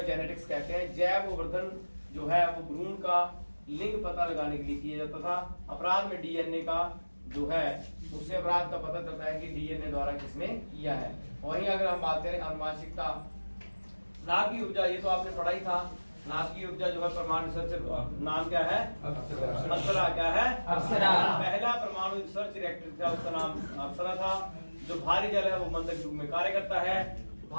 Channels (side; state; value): both; inverted; correlation -1.00